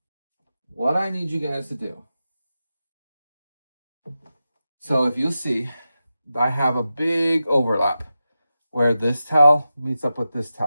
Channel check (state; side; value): inverted; both; correlation -0.91